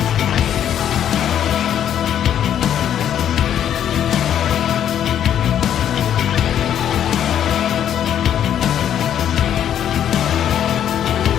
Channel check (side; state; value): right; quieter; 10.0 dB